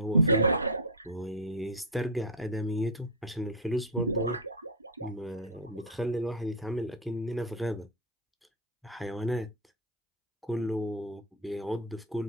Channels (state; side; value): normal; both; correlation 0.00